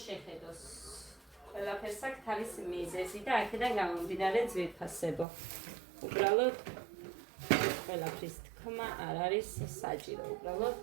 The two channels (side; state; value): left; drops out; at 5.2 s